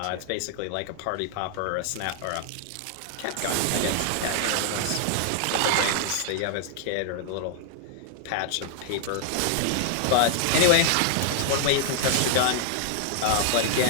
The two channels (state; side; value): different; both; correlation 0.00